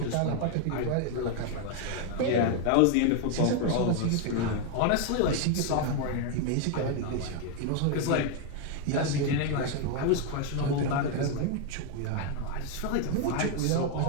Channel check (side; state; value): both; different; correlation 0.01